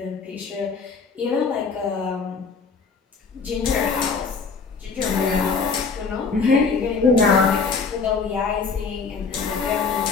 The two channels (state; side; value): quieter; right; 4.9 dB